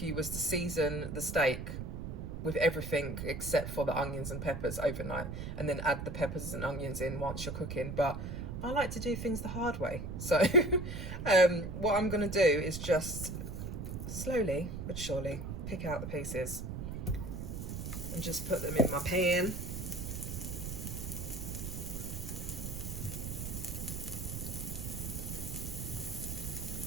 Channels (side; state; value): right; noise; rumble, 5 dB below the sound